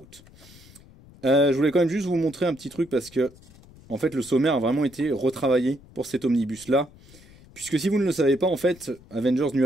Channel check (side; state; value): left; noise; rumble, 23 dB below the sound